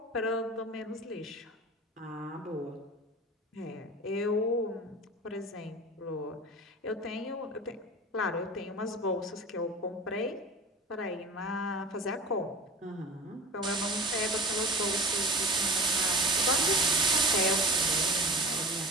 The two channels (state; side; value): normal; both; correlation 0.35